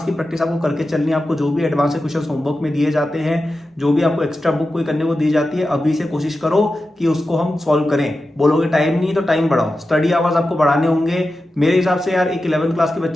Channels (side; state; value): both; normal; correlation 0.92